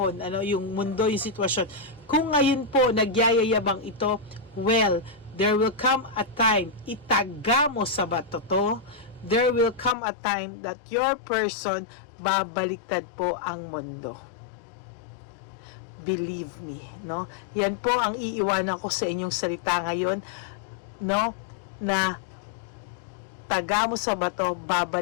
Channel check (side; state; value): right; drops out; at 10.0 s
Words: yung mundo, yung sitwasyon. Kung ngayon po, nagyayayabang ito, well, there will come a time, itaga mo sa bato to, there will come a time that your person, babaliktad po ang mundo. Believe me, no? Yan po ang iiwanan ko sa inyong salita ngayon, no? Na taga mo sa bato,